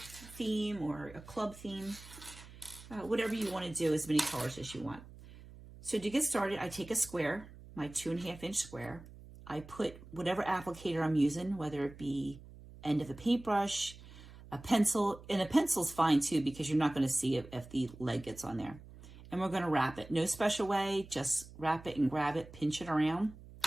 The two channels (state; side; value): noise; right; hum, 18 dB below the sound